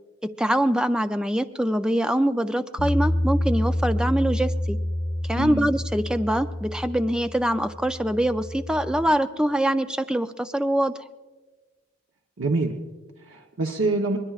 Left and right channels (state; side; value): normal; both; correlation 0.90